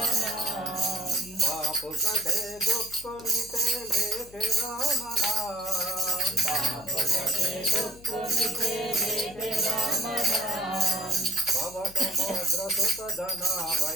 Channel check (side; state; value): left; noise; hum, 21 dB below the sound